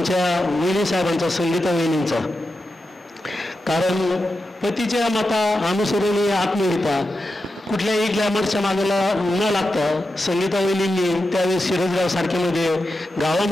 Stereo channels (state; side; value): normal; both; correlation 0.89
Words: वहिनी साहेबांचा, संगीता वहिनींचा. कारण पतीच्या मता अनुसरून आत्महत्या कुठल्याही ग्लॅमरच्या मागेला न लागता संगीता वहिनींनी त्यावेळेस सिरसगाव सारख्यामध्ये